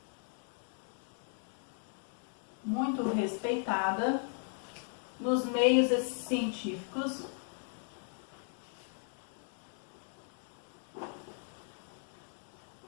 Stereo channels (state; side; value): silent; right; 53 dB below the other